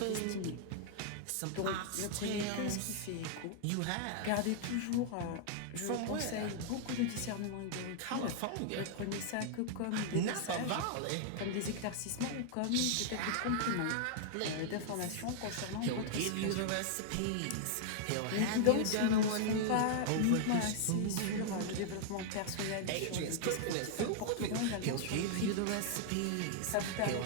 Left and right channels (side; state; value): both; different; correlation -0.01